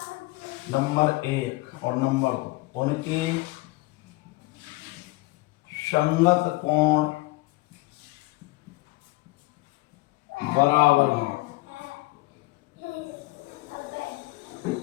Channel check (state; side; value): quieter; right; 21.7 dB